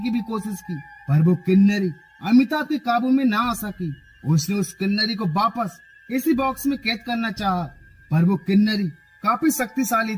भी कोशिश की, पर वो किन्नरी अमिताभ के काबू में ना आ सकी। उसने उस किन्नरी को वापस इसी बॉक्स में कैद करना चाहा, पर वो किन्नरी काफी शक्तिशाली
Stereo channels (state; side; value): identical; both; correlation 1.00